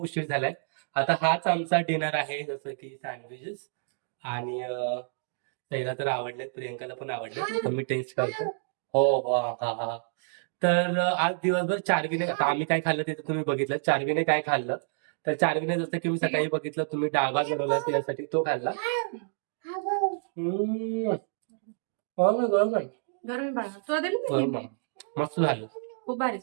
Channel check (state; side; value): silent; left; digital silence